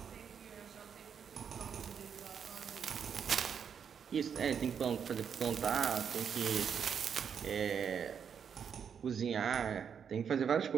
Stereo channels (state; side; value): quieter; left; 7.4 dB